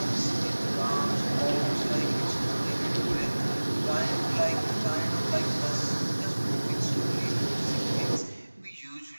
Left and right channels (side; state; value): both; inverted; correlation -1.00